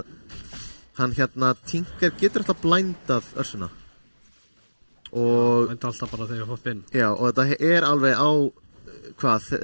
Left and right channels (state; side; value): inverted; both; correlation -1.00